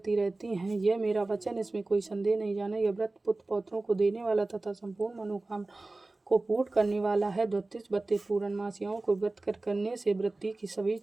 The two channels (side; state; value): left; quieter; 3.1 dB